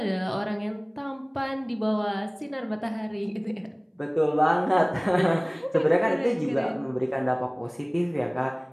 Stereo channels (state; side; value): identical; both; correlation 1.00